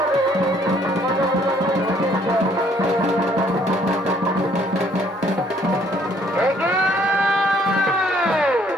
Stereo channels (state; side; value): normal; both; correlation 0.63